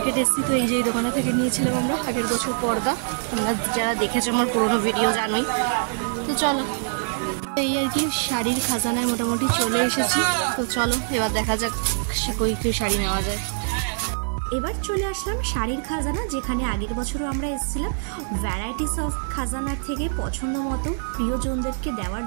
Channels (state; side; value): silent; left; digital silence